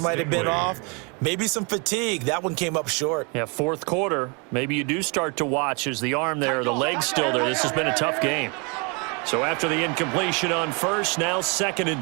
might have been off. Maybe some fatigue. That one came up short. Yeah, 4th quarter. Maybe you do start to watch as the arm there, the leg's still there. This has been a tough game. So after the incompletion on 1st, now 2nd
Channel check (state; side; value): quieter; left; 32.5 dB